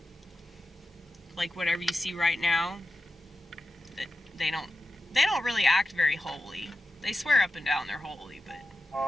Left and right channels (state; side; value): normal; both; correlation 0.92